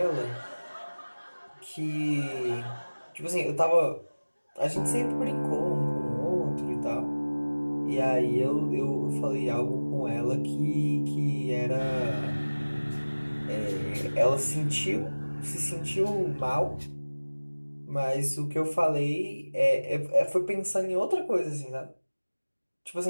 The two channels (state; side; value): inverted; both; correlation -1.00